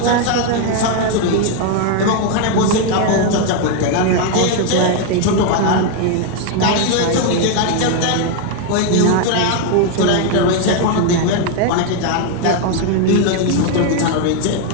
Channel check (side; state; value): both; different; correlation 0.01